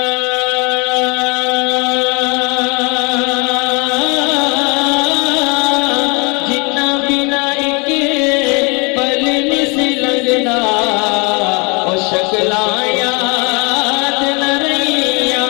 شکلاں یاد نہ رہیاں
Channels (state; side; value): quieter; right; 30.7 dB